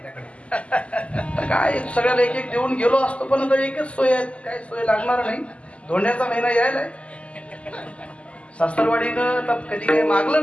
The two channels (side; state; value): right; late; 0.059 ms